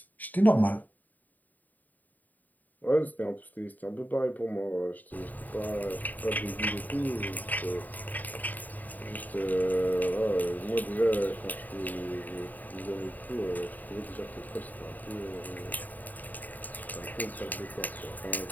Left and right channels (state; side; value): late; right; 0.084 ms